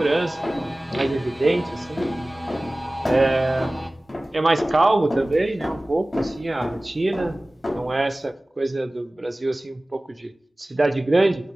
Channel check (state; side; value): normal; both; correlation 0.98